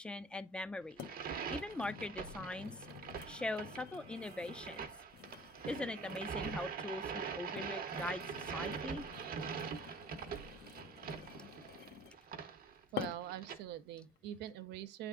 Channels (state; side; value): normal; both; correlation 0.45